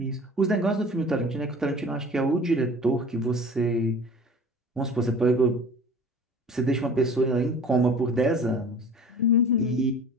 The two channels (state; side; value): normal; both; correlation 0.43